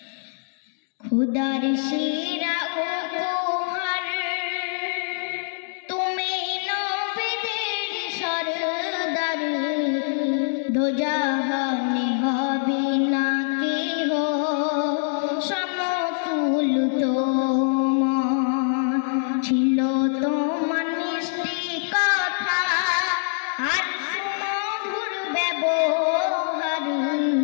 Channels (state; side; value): silent; right; digital silence